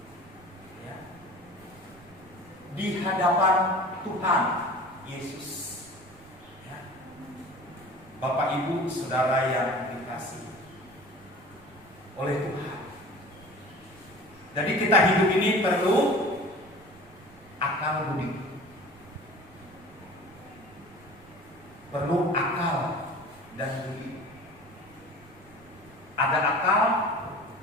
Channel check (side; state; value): right; noise; rumble, 24 dB below the sound